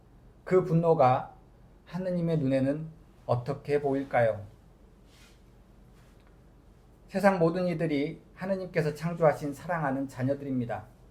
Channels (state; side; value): identical; both; correlation 1.00